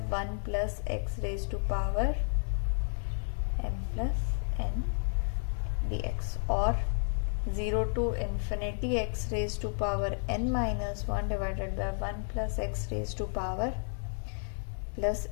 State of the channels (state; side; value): silent; right; digital silence